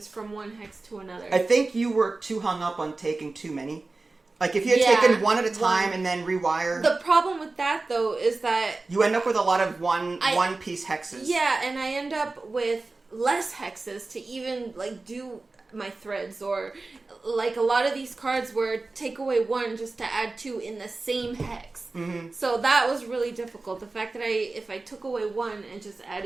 from one hex to another. I think you were too hung up on taking too many. Like, if you had taken one at a time and then rewire... The problem with that, though, is that... You end up with a lot of one-piece hexes. Yeah, and I end up with less hexes to even, like, do my threads. Or, like, a lot of these cards were take away 1 just to add 2 in the same hex. Mm-hmm. So that was really difficult. The fact that if I took away 1 and just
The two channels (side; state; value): left; quieter; 3.5 dB